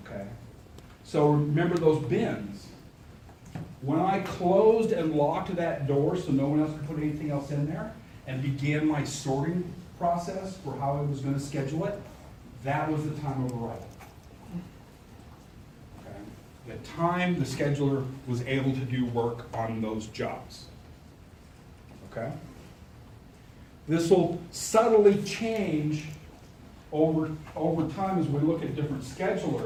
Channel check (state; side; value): identical; both; correlation 1.00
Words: Okay? So remember those bins. When I closed and locked that door so no one else could put anything else in there and began my sorting process for how I was going to schedule it, that was the time of arrival. Okay? The time the scheduler was able to do work on those jobs. Okay? This will subtly change over time as we look at different